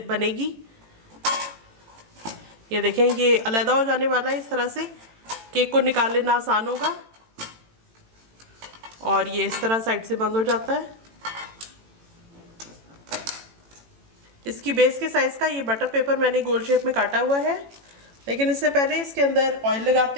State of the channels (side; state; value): left; late; 18 ms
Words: बनेगी। ये देखें, ये अलग हो जाने वाला है। इस तरह से केक को निकाल लेना आसान होगा और ये इस तरह साइड से बंद हो जाता है। इसकी बेस के साइज़ का ये बटर पेपर मैंने गोल शेप में काटा हुआ है, लेकिन इससे पहले इसके अंदर ऑयल